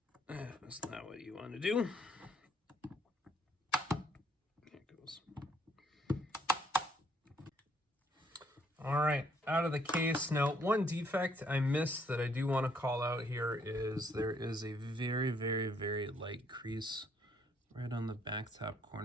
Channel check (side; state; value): both; normal; correlation 0.68